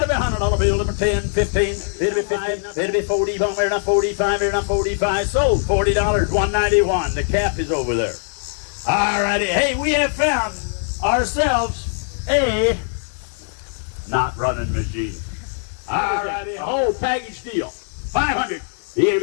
be $100 bill. It'll be 10, 15. It'll be 5. It'll be 40. Bomb here now 45. Here now 45. Sold $40. $191. The cap is over there. All righty. Hey, we have found ourselves a not running machine. All righty. Whole package deal. 500. Here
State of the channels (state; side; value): silent; right; 65 dB below the other